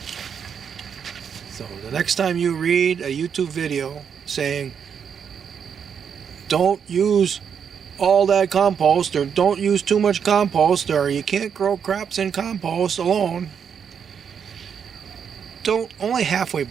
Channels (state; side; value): quieter; left; 7.3 dB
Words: So the next time you read a YouTube video saying, don't use all that compost, or don't use too much compost, or you can't grow crops in compost alone, don't only halfway